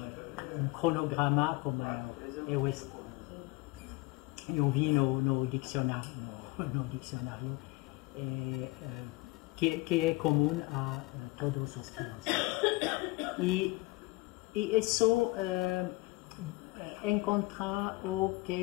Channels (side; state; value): right; quieter; 22.3 dB